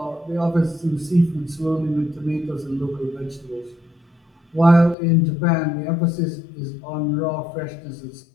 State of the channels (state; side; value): drops out; right; at 5.0 s